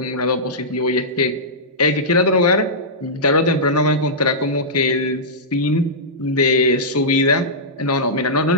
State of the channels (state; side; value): normal; both; correlation -0.14